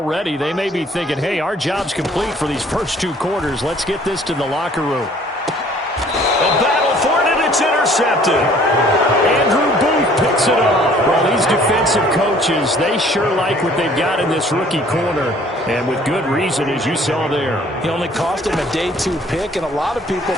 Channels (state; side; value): normal; both; correlation 0.56